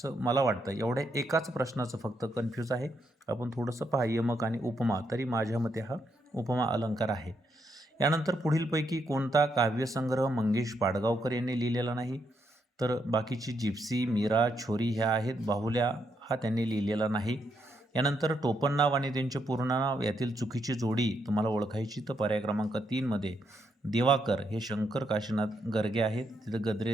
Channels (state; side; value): normal; both; correlation 0.78